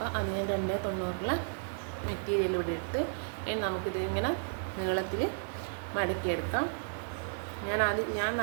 അത് ഞാൻ 290 മെറ്റീരിയൽ ഇവിടെ എടുത്ത് നമുക്കിത് ഇങ്ങനെ നീളത്തിൽ മടക്കിയെടുക്കാം. ഞാൻ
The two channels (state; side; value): silent; left; 56 dB below the other